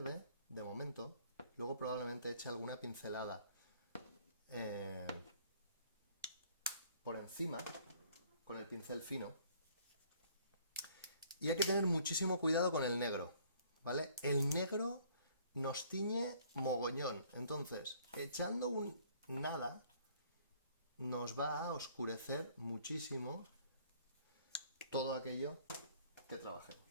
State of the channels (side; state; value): both; inverted; correlation -0.59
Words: de momento. Luego probablemente eche alguna pincelada por encima, con el pincel fino. Y hay que tener muchísimo cuidado con el negro, ¿vale? El negro nos tiñe mogollón. Entonces, echando un nada, nos va a oscurecer muchísimo todo aquello que trabajemos.